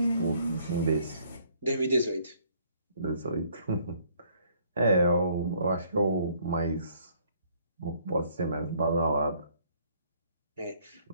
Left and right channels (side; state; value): both; inverted; correlation -0.63